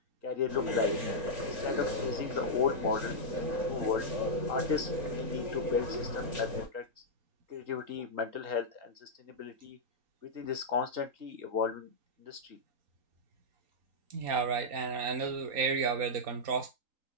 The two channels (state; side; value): late; left; 3.9 ms